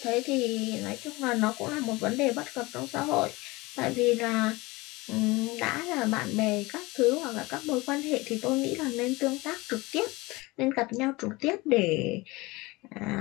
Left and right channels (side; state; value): right; quieter; 22.4 dB